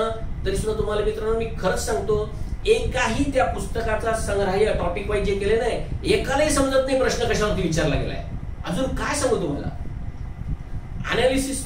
तरी सुद्धा तुम्हाला मित्रांनो मी खरंच सांगतो, एकाही त्या पुस्तकाचा संग्रह टॉपिक वाईज जे केले नाही, एकालाही समजत नाही प्रश्न कशावरती विचारला गेलाय. अजून काय सांगू तुम्हाला,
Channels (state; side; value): identical; both; correlation 1.00